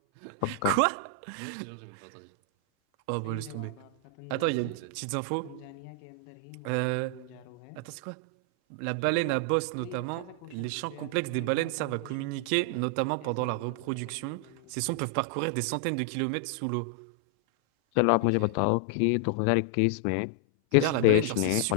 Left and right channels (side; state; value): both; different; correlation 0.00